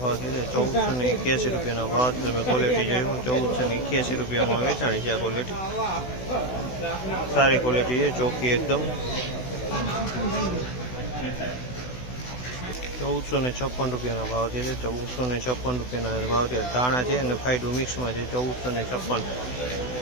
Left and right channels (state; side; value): late; right; 16 ms